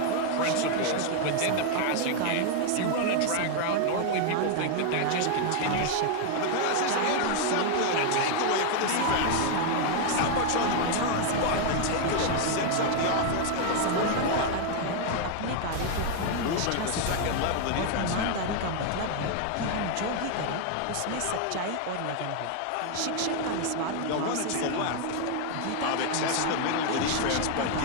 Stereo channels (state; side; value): different; both; correlation 0.00